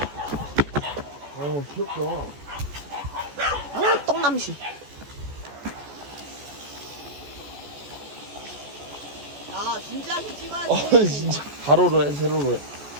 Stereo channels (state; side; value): late; left; 14 ms